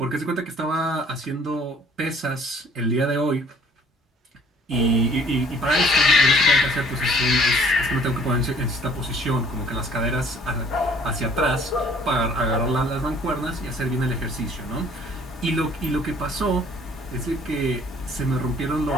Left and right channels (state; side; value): normal; both; correlation 0.57